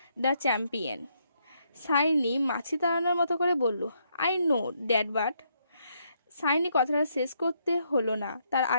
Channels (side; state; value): both; inverted; correlation -0.74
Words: the champion. Saini মাছি তাড়ানোর মতো করে বলল, I know that, but. Saini কথাটা শেষ করতে হলো না, তার